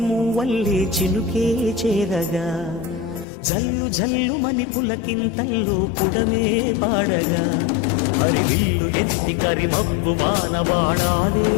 చినుకే చేరగా జల్లు జల్లు మని పులకింతల్లో పుడమే పాడగా హరివిల్లు ఎత్తి కరిమబ్బు వానబాడాలే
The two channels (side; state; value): right; drops out; at 3.2 s